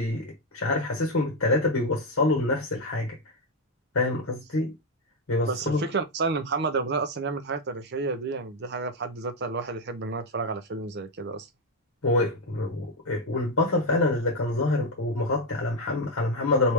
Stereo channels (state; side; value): normal; both; correlation 0.06